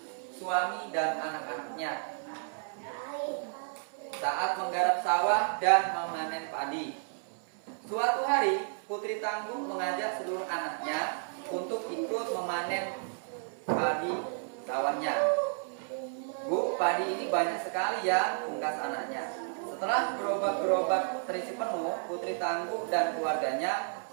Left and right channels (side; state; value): left; silent; 56 dB below the other